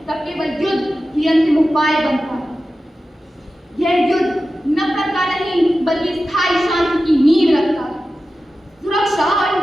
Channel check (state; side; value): normal; both; correlation 0.93